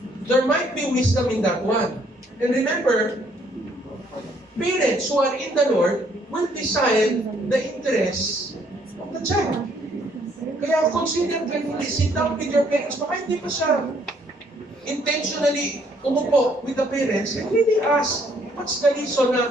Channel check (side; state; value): both; normal; correlation 0.66